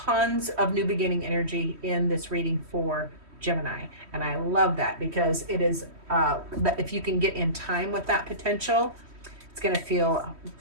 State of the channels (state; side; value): late; left; 3.1 ms